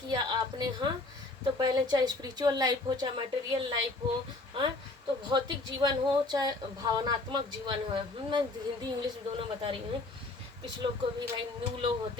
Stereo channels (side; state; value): right; quieter; 3.1 dB